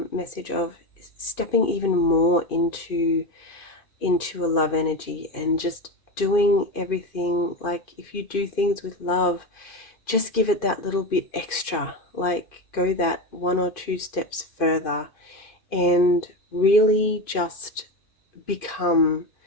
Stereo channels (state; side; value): late; right; 2.5 ms